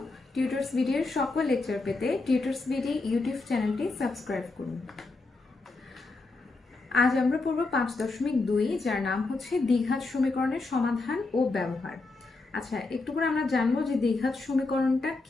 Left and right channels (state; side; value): quieter; right; 3.5 dB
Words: টিউটরস ভিডিওর সকল লেকচার পেতে টিউটরস ভিডিও ইউটিউব চ্যানেলটি সাবস্ক্রাইব করুন। আজ আমরা পড়ব 5.2, যার নাম হচ্ছে দ্বিঘাত সমীকরণের সমাধান ও ব্যবহার। আচ্ছা, একটু করে আমরা জানবো যে দ্বিঘাত সমীকরণটা